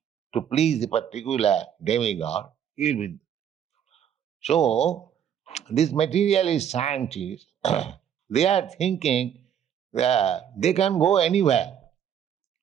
to please the particular demigod. You'll be. So, these materialist scientists, they are thinking that they can go anywhere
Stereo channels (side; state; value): left; quieter; 9.0 dB